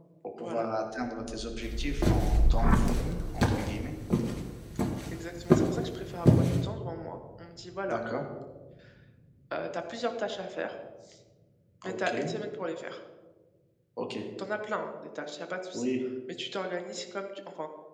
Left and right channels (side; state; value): both; identical; correlation 1.00